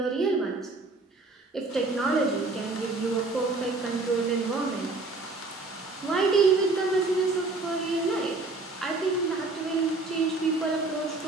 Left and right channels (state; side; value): quieter; left; 3.4 dB